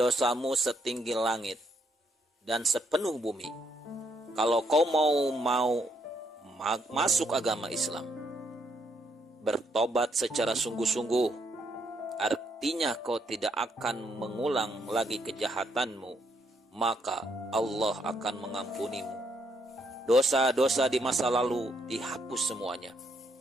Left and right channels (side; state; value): both; normal; correlation 0.73